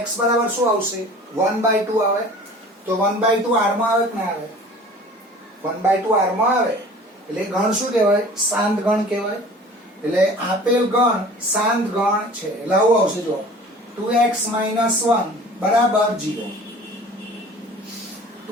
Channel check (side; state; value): both; normal; correlation 0.44